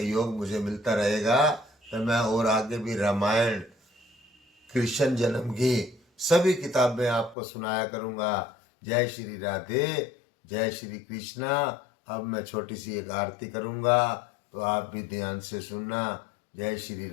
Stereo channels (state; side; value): drops out; right; at 7.4 s